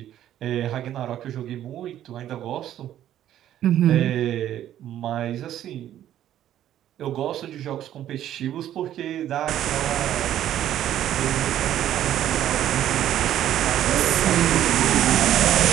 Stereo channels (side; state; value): left; quieter; 11.7 dB